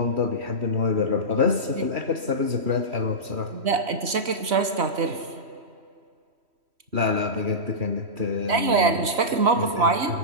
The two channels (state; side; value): late; left; 3.1 ms